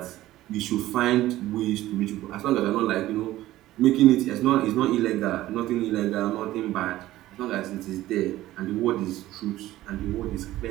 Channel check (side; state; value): left; quieter; 15.4 dB